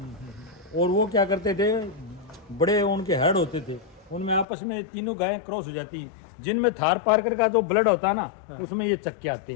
और वो क्या करते थे, बड़े उनके हेड होते थे, उनमें आपस में तीनों गायें क्रॉस हो जाती हैं। जिनमें थार पारकर का जो ब्लड होता है ना, उसमें ये चक्के आते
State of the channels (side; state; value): right; drops out; at 4.5 s